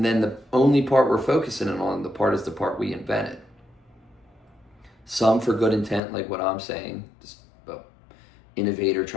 then the only part we're focusing on, is the part we invented. Some for good intent, like what I'm saying, just an innovator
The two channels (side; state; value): right; drops out; at 6.0 s